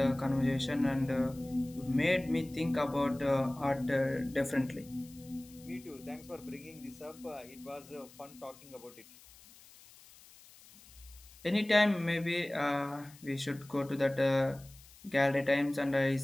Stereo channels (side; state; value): left; noise; hiss, 23 dB below the sound